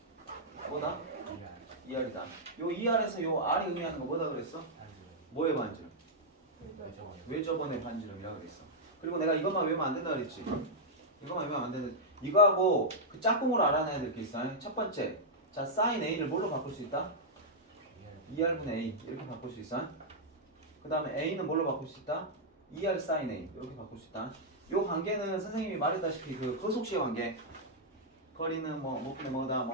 뭐다? 2R이다. 요 2R에서 요 R이 의미하는 거 뭐다 그랬어? 뭐의 반지름? 외접원의 반지름이라 그랬어. 그리고 내가 이것만 외우면 안 된다 그랬지. 이것만 외우면 안 된다. 이거하고 그 짝꿍으로 알아내야 될 게 있어. 첫 번째, 자 사인 A를 뭘로 바꿀 수 있다? 2R분의 A 이렇게 바꿀 수 있어. 그 다음에 A는 뭘로 바꿀 수 있다? 2R 사인 A 이렇게 바꿀 수 있다. 요 관계는 선생님이 말했다시피 그 거속시의 관계. 거리는 뭐 몇 분의 뭐다,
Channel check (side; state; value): both; normal; correlation -0.06